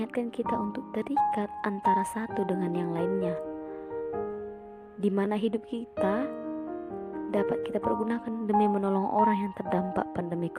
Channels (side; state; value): both; identical; correlation 1.00